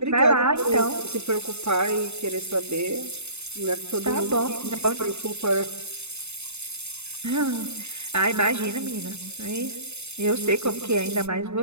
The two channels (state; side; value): late; left; 0.81 ms